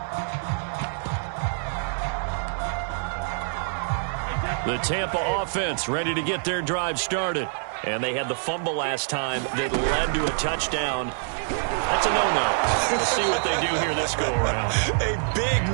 The Tampa offense ready to get their drive started. And they had the fumble last time that led to a touchdown. That's a no-no. We'll see what they do here this go-around. A big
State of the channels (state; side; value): silent; left; 61 dB below the other